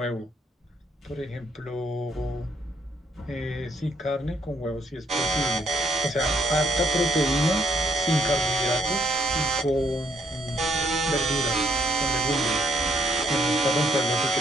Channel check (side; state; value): both; normal; correlation 0.70